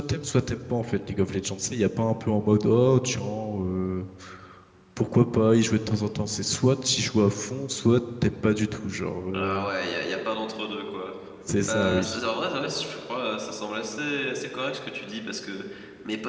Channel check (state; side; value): identical; both; correlation 1.00